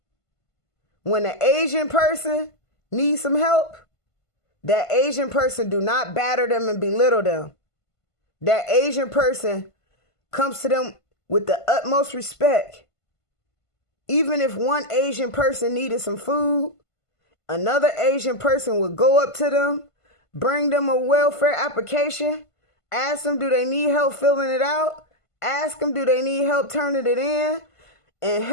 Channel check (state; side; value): late; right; 1.5 ms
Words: When an Asian person needs some help, that Asian person do not batter them and belittle them. That Asian person comes to them with the utmost respect. Even if one Asian person needed some food, another Asian person would go up to them, bring them a welfare application, ask them do they need help filling it out, ask them do they need help turning it in, and